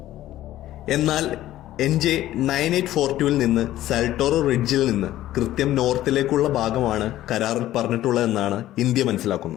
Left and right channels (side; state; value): right; quieter; 14.1 dB